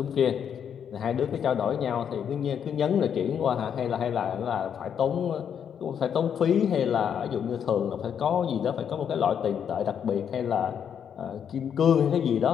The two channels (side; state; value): right; quieter; 8.2 dB